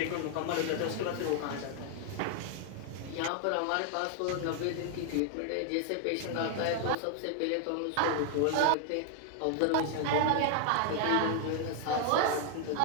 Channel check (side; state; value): both; different; correlation 0.00